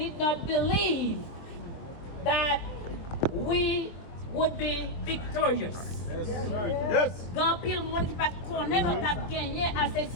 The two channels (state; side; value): late; right; 24 ms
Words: not believe that we would be victorious. Yes. Grand pile monde qui pas connaît notre a gagné assez